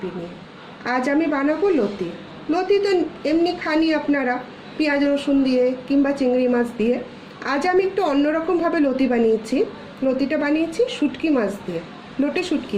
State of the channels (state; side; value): identical; both; correlation 1.00